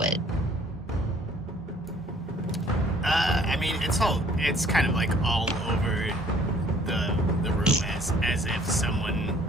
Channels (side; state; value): both; normal; correlation 0.57